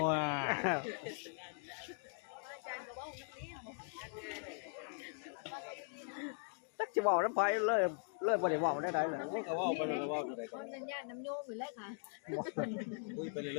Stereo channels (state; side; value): silent; right; 51 dB below the other